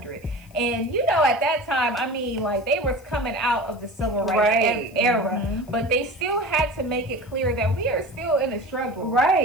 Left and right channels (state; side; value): noise; left; hiss, 28 dB below the sound